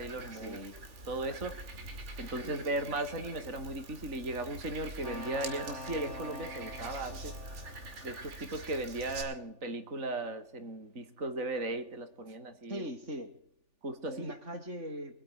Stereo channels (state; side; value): late; left; 3.4 ms